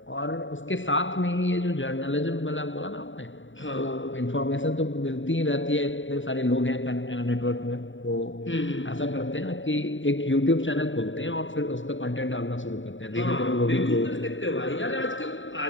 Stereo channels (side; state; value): right; late; 0.56 ms